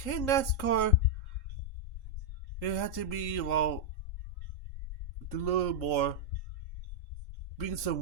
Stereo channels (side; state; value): right; late; 3.8 ms